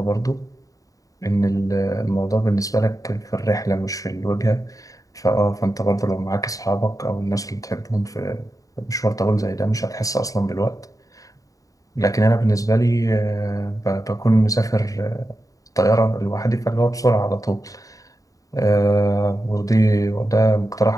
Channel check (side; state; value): right; late; 0.16 ms